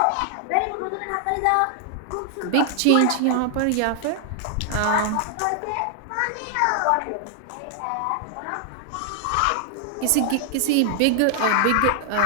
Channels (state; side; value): different; both; correlation 0.00